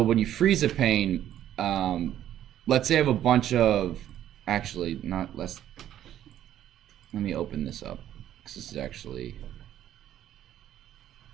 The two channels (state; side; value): quieter; left; 11.6 dB